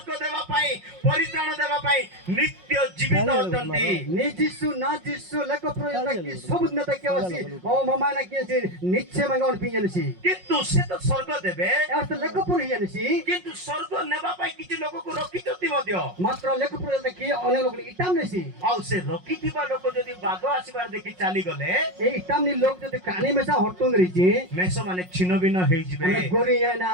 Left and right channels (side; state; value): left; late; 5.5 ms